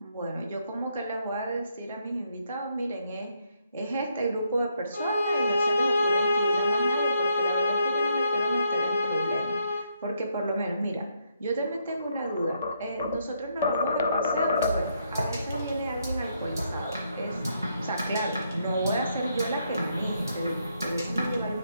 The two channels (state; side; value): inverted; both; correlation -0.75